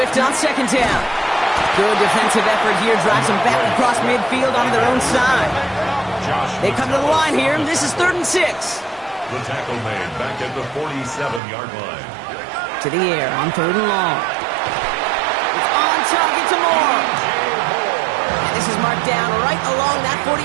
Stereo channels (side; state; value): left; drops out; at 11.4 s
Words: on 2nd down. Good defensive effort here. Drives them back across midfield onto their own side. They come to the line here. This is 3rd and 6. The tackle made back at the 47-yard line. To the air on 3rd and long. It's on target to Moore. And this is Mark down right along that